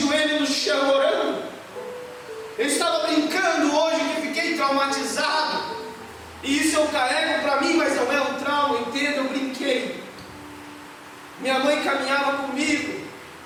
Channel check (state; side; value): identical; both; correlation 1.00